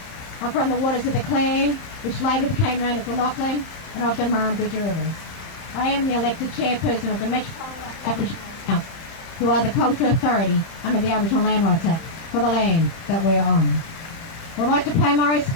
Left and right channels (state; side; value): late; right; 31 ms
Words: I'm from the waters of the Clan, which later became known as the Lachlan, and of the Murrumbeena Rivers. I am the elected chairperson of the Metropolitan Aboriginal Council, who are the cultural authority under the Aboriginal Land Rights Act for the land that we are on. I would like to pay my